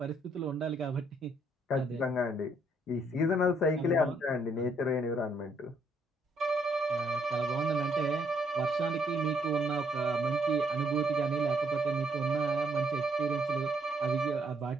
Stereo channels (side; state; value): both; normal; correlation 0.70